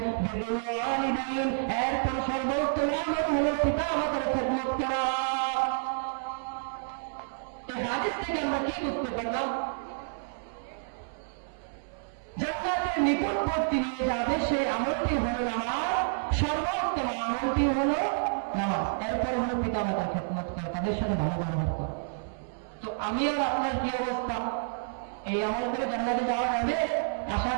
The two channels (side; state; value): left; silent; 58 dB below the other